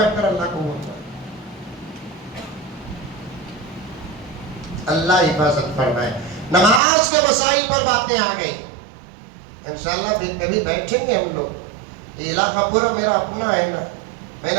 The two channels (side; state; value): left; drops out; at 6.8 s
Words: کر اللہ کو بولتا. اللہ حفاظت فرمائے. نماز کے مسائل پر باتیں آ گئی, انشاءاللہ پھر کبھی بیٹھیں گے ہم لوگ. یہ علاقہ پورا میرا اپنا ہے نا, میں